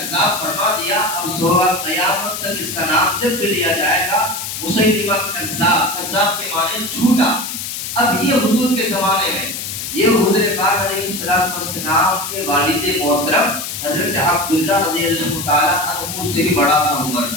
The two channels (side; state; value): left; noise; hiss, 6 dB below the sound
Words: فرما دیا، اب صبح قیامت تک اس کا نام جب بھی لیا جائے گا مسیلمہ کذاب، کذاب کے معنی جھوٹا۔ اب یہ حضور کے زمانے میں، یہ حضور پاک علیہ الصلوۃ والسلام کے والد محترم حضرت عبداللہ رضی اللہ تعالیٰ عنہ سے بھی بڑا تھا عمر۔